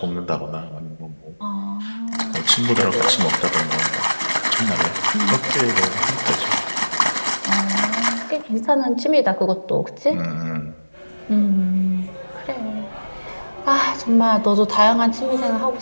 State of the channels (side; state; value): both; inverted; correlation -1.00